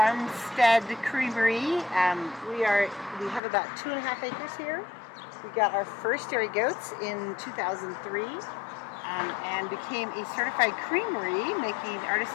creamery. We have about 2.5 acres here. We got our first dairy goats in 2003 and became a certified creamery, making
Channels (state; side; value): drops out; right; at 3.4 s